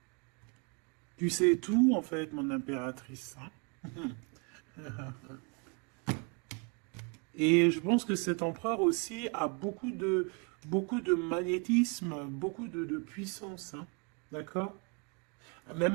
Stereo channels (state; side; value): quieter; left; 34.1 dB